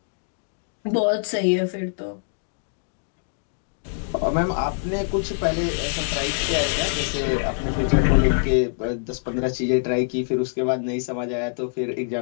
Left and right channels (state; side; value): silent; right; digital silence